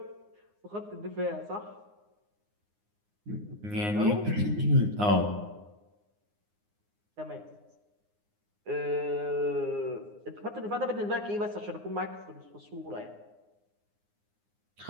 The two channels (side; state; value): left; late; 9.7 ms